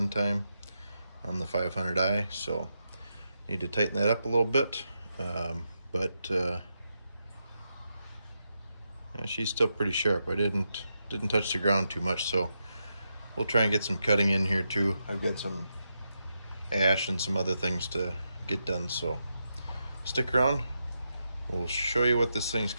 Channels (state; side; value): inverted; both; correlation -0.85